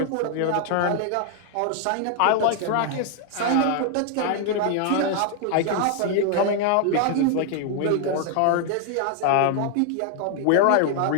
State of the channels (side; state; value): both; different; correlation 0.00